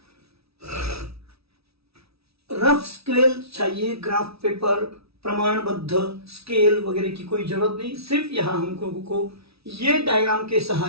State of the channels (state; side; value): late; left; 0.77 ms